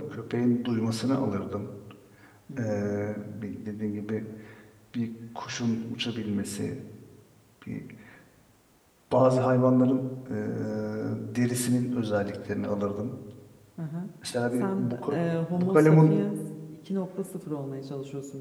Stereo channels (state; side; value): identical; both; correlation 1.00